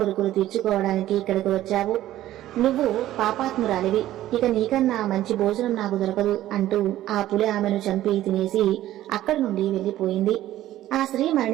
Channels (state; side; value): quieter; left; 13.9 dB